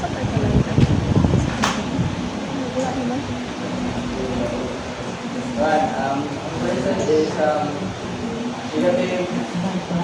Present is negative.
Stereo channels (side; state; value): both; identical; correlation 1.00